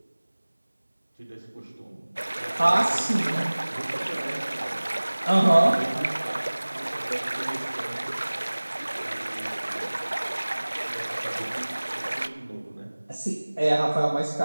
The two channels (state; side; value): inverted; both; correlation -1.00